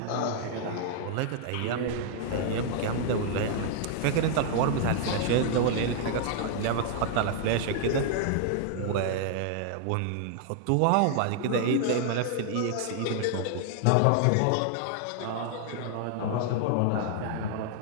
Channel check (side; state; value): both; different; correlation -0.01